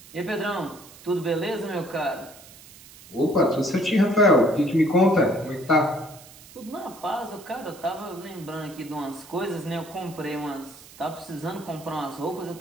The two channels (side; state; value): right; noise; hiss, 20 dB below the sound